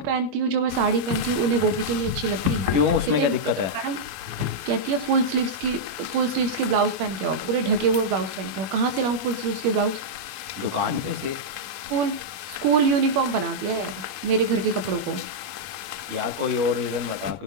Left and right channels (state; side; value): late; left; 21 ms